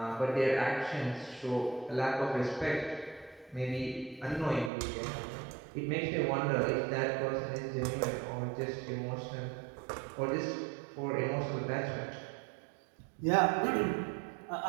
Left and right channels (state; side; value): drops out; left; at 4.7 s